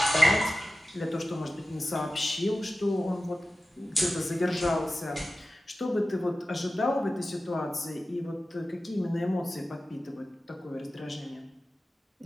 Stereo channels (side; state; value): both; normal; correlation 0.94